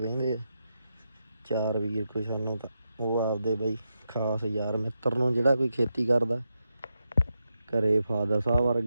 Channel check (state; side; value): inverted; both; correlation -0.86